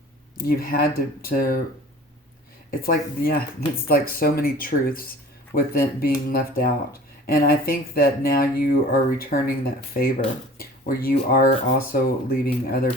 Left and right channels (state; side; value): normal; both; correlation 0.44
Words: you've had to it's like so many truths with it being left out. And I think that now you are returning that favor, where you are also leaving other